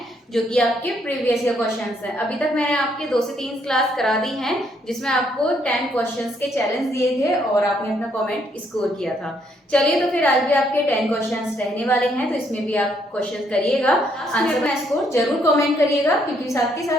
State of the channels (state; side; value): normal; both; correlation 0.71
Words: जो कि आपके प्रीवियस ईयर क्वेश्चंस हैं। अभी तक मैंने आपके 2 से 3 क्लास करा दी हैं जिसमें आपको 10 क्वेश्चंस के चैलेंज दिए थे और आपने अपना कमेंट स्कोर किया था। चलिए, तो फिर आज भी आपके 10 क्वेश्चंस रहने वाले हैं, तो इसमें भी आप क्वेश्चन करिएगा, आंसर में स्कोर जरूर कमेंट करिएगा, क्योंकि साथ के